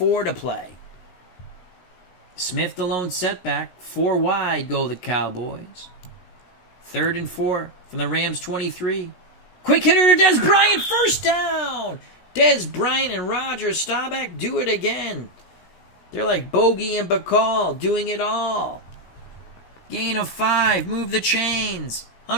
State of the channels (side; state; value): right; late; 16 ms